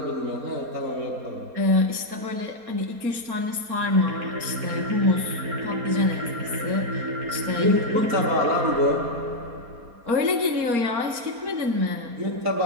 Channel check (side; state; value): left; late; 4.3 ms